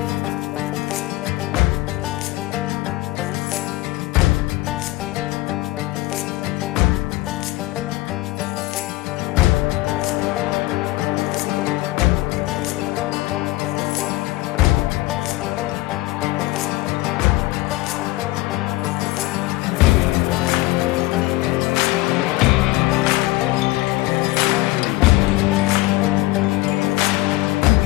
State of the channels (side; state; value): right; quieter; 19.4 dB